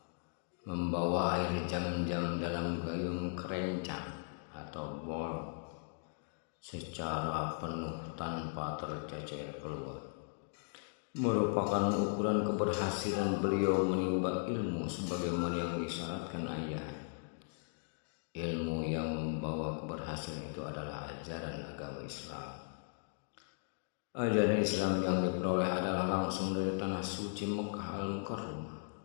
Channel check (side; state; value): right; silent; digital silence